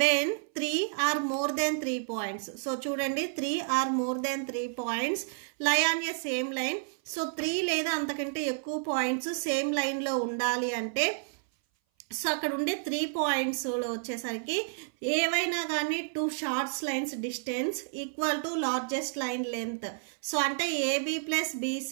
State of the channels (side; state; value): left; silent; 58 dB below the other